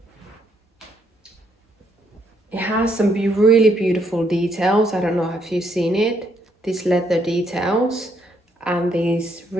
It has some really beautiful details. I don't know if you've seen it. These leather details and these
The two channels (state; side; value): normal; both; correlation 0.72